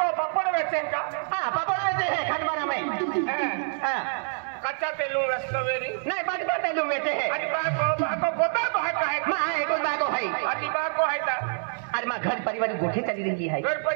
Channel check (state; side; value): silent; left; digital silence